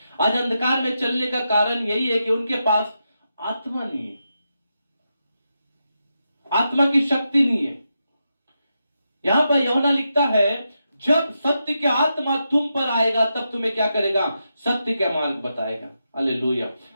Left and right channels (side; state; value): both; inverted; correlation -0.86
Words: आज अंधकार में चलने का कारण यही है कि उनके पास आत्मा नहीं है, आत्मा की शक्ति नहीं है। यहां पर यूहन्ना लिखता है, जब सत्य के आत्मा तुम पर आएगा तब तुम्हें क्या करेगा? सत्य का मार्ग बताएगा। हालेलुया,